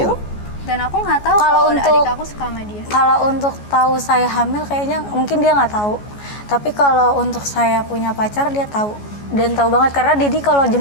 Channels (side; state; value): right; late; 14 ms